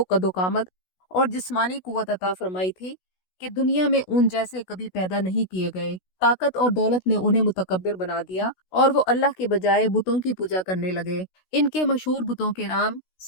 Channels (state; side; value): late; right; 16 ms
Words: कदोकामत और जिस्मानी कुव्वत अता फरमाई थी कि दुनिया में उन जैसे कभी पैदा नहीं किए गए। ताकत और दौलत ने उन्हें मुतकब्बिर बना दिया और वो अल्लाह के बजाय बुतों की पूजा करने लगे। इनके मशहूर बुतों के नाम